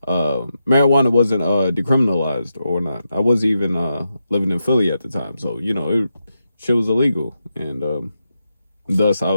marijuana wasn't decriminalized or not. I wasn't even living in Philly at the time, so you know shit was illegal, and thus I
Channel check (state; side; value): inverted; both; correlation -0.86